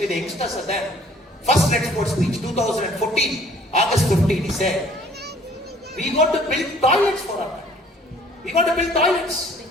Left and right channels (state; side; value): normal; both; correlation 0.56